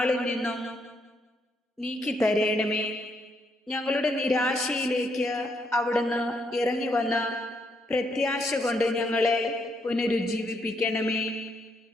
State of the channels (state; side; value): normal; both; correlation 0.75